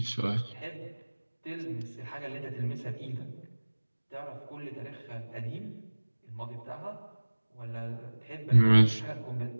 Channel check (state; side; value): inverted; both; correlation -1.00